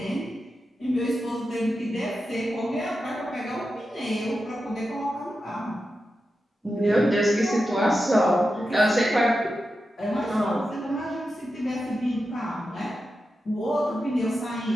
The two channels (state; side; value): normal; both; correlation 0.90